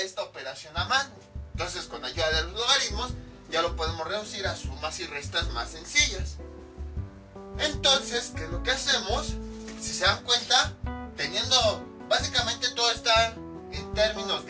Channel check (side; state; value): both; identical; correlation 1.00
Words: esta operación a mano. Entonces, con ayuda de los logaritmos, ya lo podemos reducir a sumas y restas más sencillas. Entonces, ¿qué es lo que hacemos? Si se dan cuenta, teniendo básicamente todo está en términos